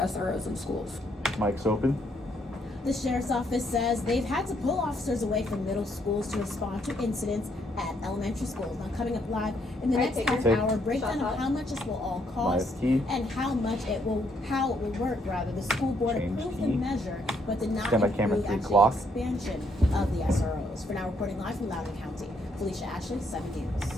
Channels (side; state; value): both; normal; correlation 0.72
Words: in schools. Mic's open. The sheriff's office says they've had to pull officers away from middle schools to respond to incidents at elementary schools. Now coming up live in the Alright, next take half it. hour, breakdown Shot of how much this will all cost Live key. and how it will work rather. The school board Change approved key. the measure but did not Stand by camera approve 3 actually clock. expansion of the SROs. For now, reporting live from Loudoun County, Felicia Ashley, 7